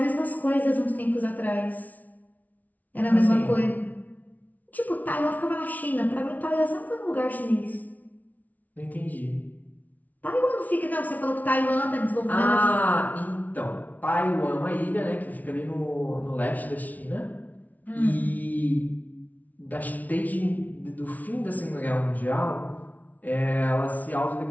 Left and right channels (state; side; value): late; right; 0.075 ms